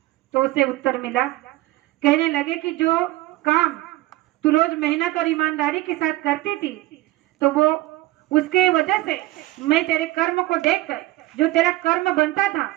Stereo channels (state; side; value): quieter; left; 17.9 dB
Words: तो उसे उत्तर मिला, कहने लगे कि जो काम तू रोज मेहनत और ईमानदारी के साथ करती थी, तो वो उसके वजह से मैं तेरे कर्म को देखकर, जो तेरा कर्म बनता था